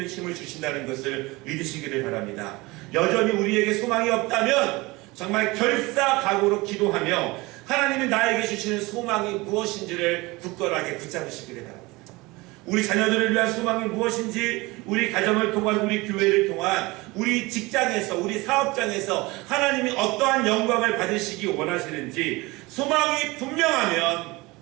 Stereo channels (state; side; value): quieter; left; 22.7 dB